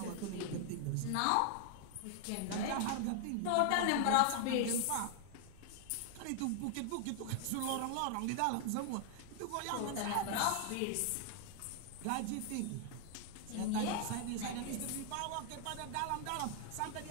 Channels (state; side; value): different; both; correlation 0.00